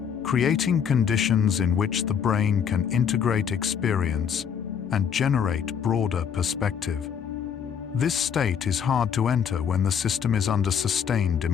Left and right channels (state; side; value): quieter; right; 7.6 dB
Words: creating conditions in which the brain can integrate experience and generate broader perspective. This state is hard to enter when the system is under sustained